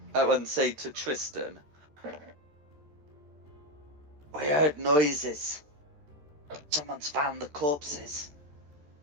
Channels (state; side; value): late; left; 13 ms